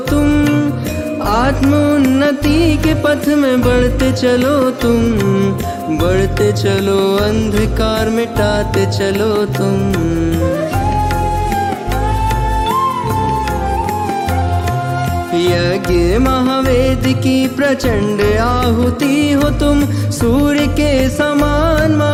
तुम, आत्मोन्नति के पथ में बढ़ते चलो तुम, बढ़ते चलो अंधकार मिटाते चलो तुम। यज्ञ महावेद की प्रचंड आहुति हो तुम, सूर्य के समान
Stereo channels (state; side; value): identical; both; correlation 1.00